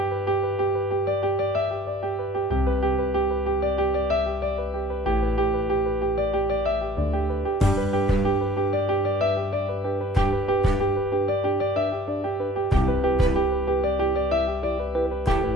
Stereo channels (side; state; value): both; normal; correlation 0.51